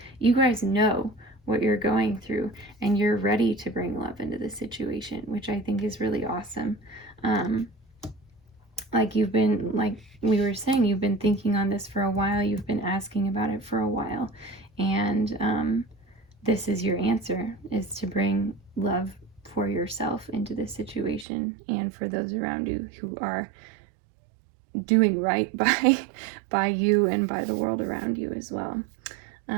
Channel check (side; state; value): left; drops out; at 21.2 s